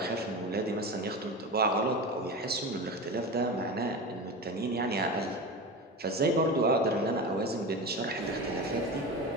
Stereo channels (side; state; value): both; normal; correlation 0.25